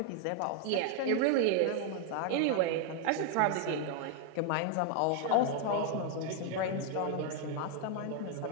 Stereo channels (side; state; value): both; different; correlation 0.01